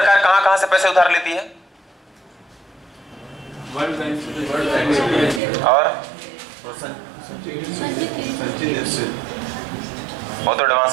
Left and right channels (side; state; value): left; drops out; at 5.4 s